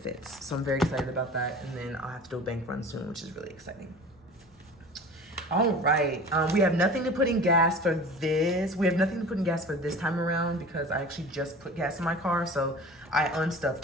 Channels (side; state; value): both; normal; correlation 0.39